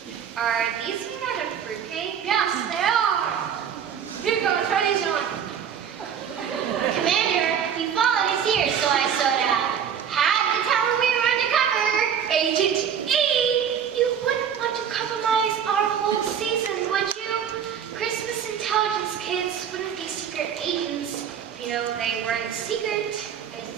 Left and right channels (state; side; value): quieter; left; 8.2 dB